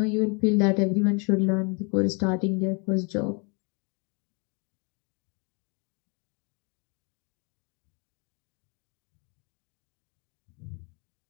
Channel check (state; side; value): quieter; right; 33.0 dB